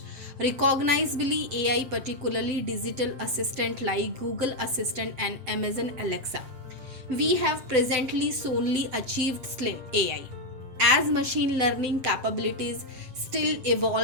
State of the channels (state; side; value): late; left; 7.9 ms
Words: recognizably AI, particularly digital assistant like Google Assistant and Amazon Alexa. We have presently solely achieved slim AI. As machine learning capabilities still